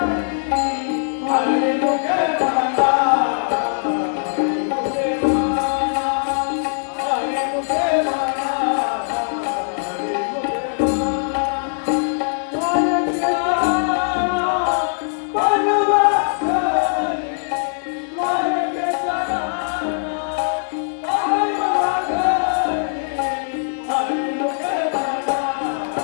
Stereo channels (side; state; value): right; silent; digital silence